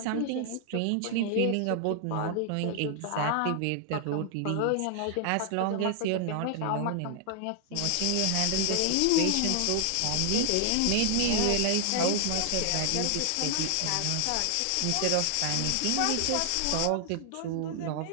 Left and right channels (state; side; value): different; both; correlation 0.00